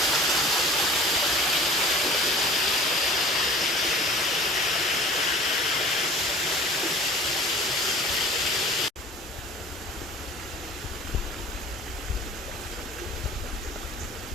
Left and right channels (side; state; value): both; normal; correlation 0.44